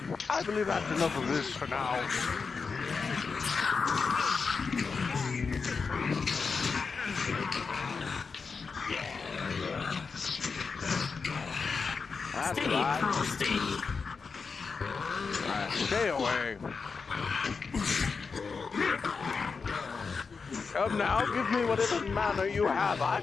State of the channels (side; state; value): right; quieter; 5.0 dB